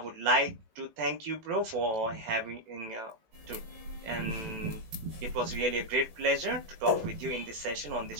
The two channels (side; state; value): left; late; 18 ms